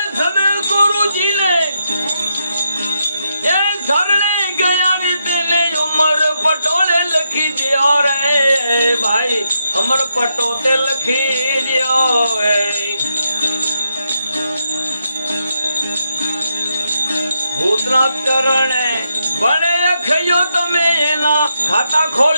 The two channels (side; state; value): both; inverted; correlation -0.82